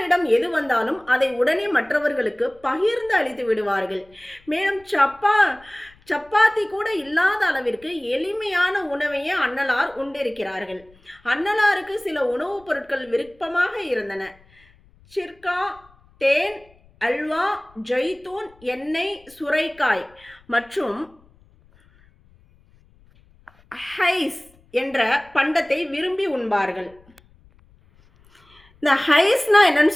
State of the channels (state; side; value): noise; left; rumble, 29 dB below the sound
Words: எது வந்தாலும் அதை உடனே மற்றவர்களுக்கு பகிர்ந்து அளித்து விடுவார்கள். மேலும் சப்பாத்தி கூட இல்லாத அளவிற்கு எளிமையான உணவையே அன்னலார் உண்டிருக்கிறார்கள். அன்னலாருக்கு சில உணவுப் பொருட்கள் விருப்பமாக இருந்தன. சிர்கா, தேன், அல்வா, ஜெய்தூன், எண்ணெய், சுரைக்காய் மற்றும் ஹைஸ் என்ற பண்டத்தை விரும்பி உண்பார்கள். இந்த ஹைஸ்னா என்னன்னு